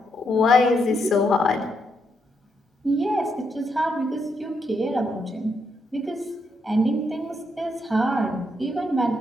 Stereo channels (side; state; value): both; normal; correlation 0.78